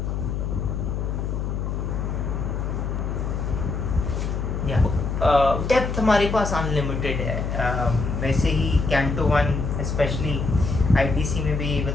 डेप्थ हमारे पास अनलिमिटेड है. वैसे ही कैंटो 1 स्पेशली आईटीसी में भी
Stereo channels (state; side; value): noise; left; hum, 2 dB below the sound